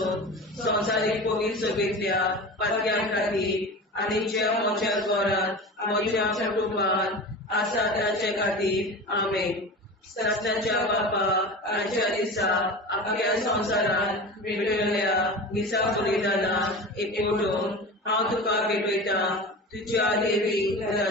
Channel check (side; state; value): both; normal; correlation 0.31